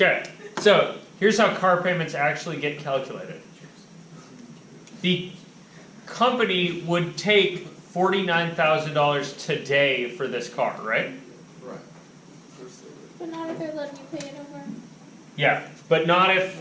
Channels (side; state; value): both; identical; correlation 1.00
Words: so here's how car payments actually get calculated. The company would take $49,000 today for this car, right? Right. But not if they're letting you pay it over. Yeah, but not if.